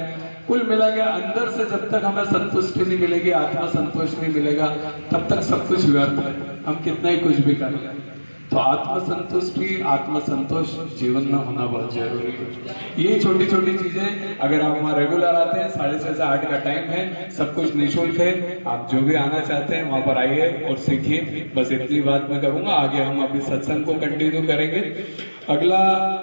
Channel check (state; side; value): inverted; both; correlation -1.00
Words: कुल मिला के अंदर से जब तक हमें संतुष्टि नहीं मिलेगी, आत्मा संतोष नहीं मिलेगा, तब तक सब कुछ व्यर्थ है, हम कितना ही कुछ भी कर लें। तो आत्म संतुष्टि, आत्म संतोष जीवन में होना बहुत जरूरी है। ये छोटी छोटी चीजें अगर आप वहाँ रेगुलर आते हैं, 6:30 से 8 का टाइम है, सब कुछ निःशुल्क है, आप जो भी आना चाहते हैं वहां पर आइए और सीखिए। बस इतनी बात मैं करूंगा। आगे हम अभी सत्संग को कंटिन्यू करेंगे। अगला